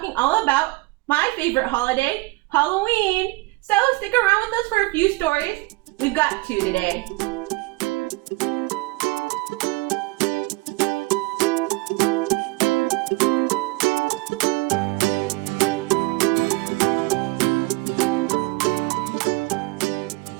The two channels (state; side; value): quieter; left; 23.3 dB